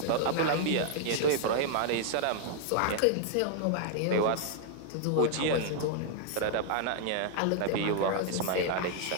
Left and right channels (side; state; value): both; different; correlation -0.01